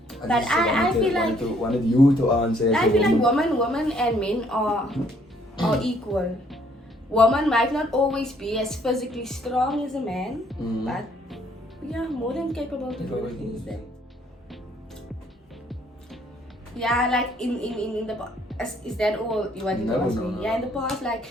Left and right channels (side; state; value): both; normal; correlation 0.65